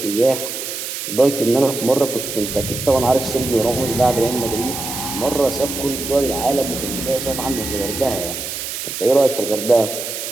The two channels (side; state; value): right; noise; hiss, 6 dB below the sound